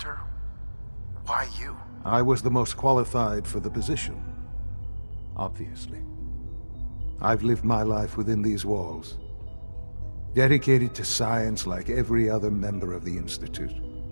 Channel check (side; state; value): both; inverted; correlation -1.00